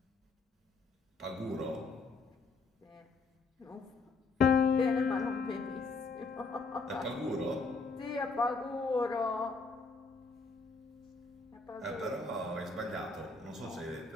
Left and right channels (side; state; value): right; quieter; 4.1 dB